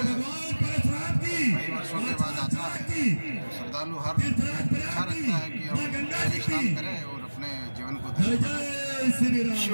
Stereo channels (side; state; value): both; inverted; correlation -1.00